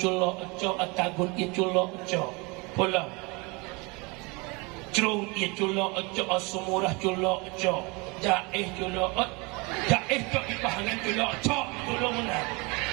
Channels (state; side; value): quieter; left; 27.9 dB